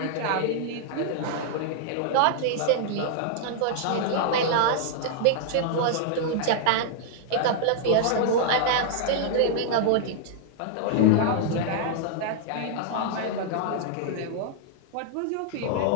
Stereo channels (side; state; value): both; different; correlation -0.01